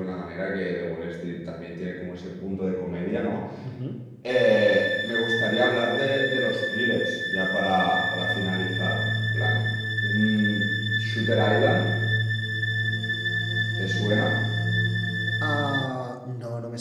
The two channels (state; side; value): identical; both; correlation 1.00